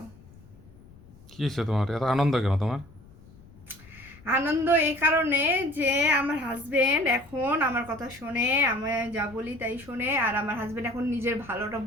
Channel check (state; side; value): noise; left; rumble, 23 dB below the sound